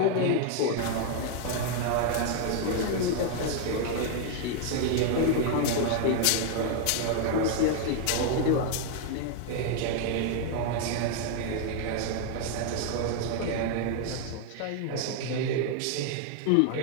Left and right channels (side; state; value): both; different; correlation 0.00